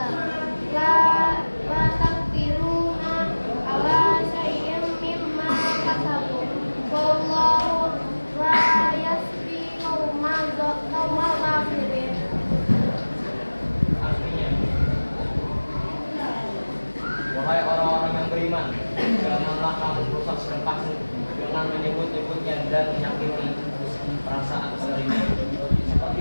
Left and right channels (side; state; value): both; inverted; correlation -1.00